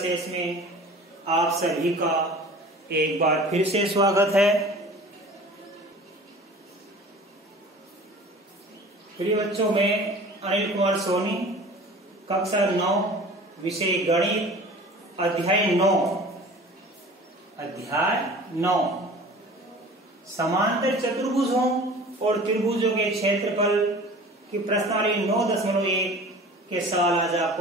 में आप सभी का एक बार फिर से स्वागत है। प्रिय बच्चों, मैं अनिल कुमार सोनी, कक्षा 9, विषय गणित, अध्याय 9 समांतर चतुर्भुजों और त्रिभुजों के क्षेत्रफल की प्रश्नावली 9.1 के साथ आज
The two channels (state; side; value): normal; both; correlation 0.42